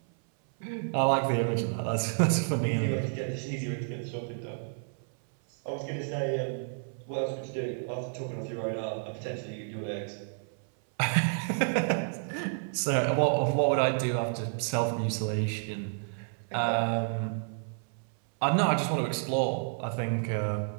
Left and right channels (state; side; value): silent; left; 58 dB below the other